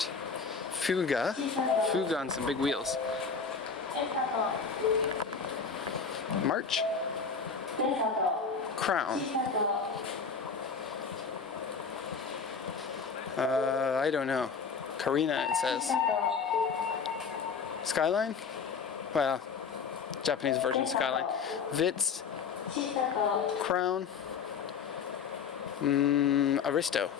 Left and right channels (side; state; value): right; quieter; 5.7 dB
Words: Fuga on some big wheels. March, Crown. I don't know. Karina, it says. Skyline? Well, Japanese version Skyline. Vitz, Crown, Aristo,